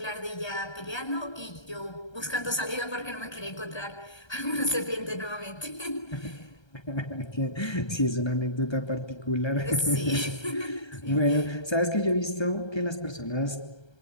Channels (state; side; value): late; right; 1.3 ms